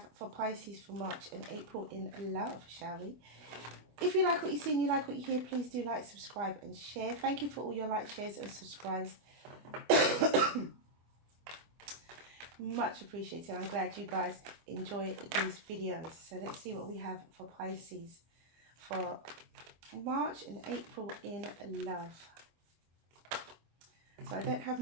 for Pisces for March and April in love, shall we? If you like what you see and you like what you hear, please do like, subscribe and share. Thank you for all your likes, shares and subscribes. Much appreciated. I'm glad you guys enjoy these videos. So let's see what we have for Pisces for March and April in love. So I don't have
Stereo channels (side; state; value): left; late; 25 ms